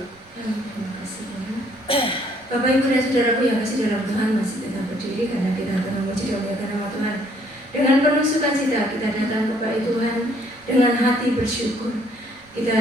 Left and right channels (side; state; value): right; noise; rumble, 29 dB below the sound